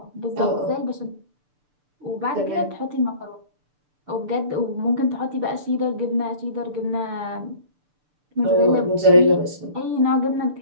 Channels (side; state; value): left; late; 6.8 ms